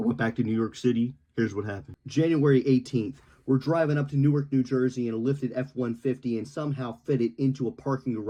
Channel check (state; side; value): identical; both; correlation 1.00